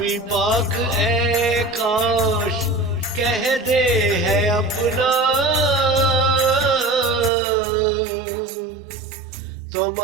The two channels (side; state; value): left; drops out; at 7.3 s